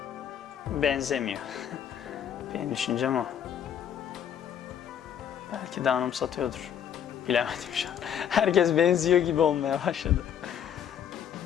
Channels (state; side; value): quieter; right; 9.0 dB